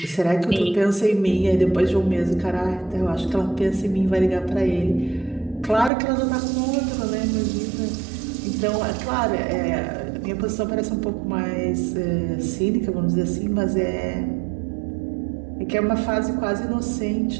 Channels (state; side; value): drops out; left; at 5.9 s